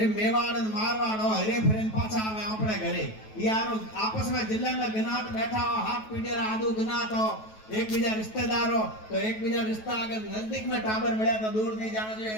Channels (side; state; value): right; late; 9.2 ms